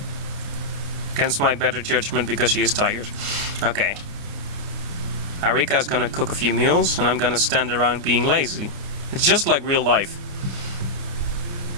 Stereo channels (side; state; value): left; late; 29 ms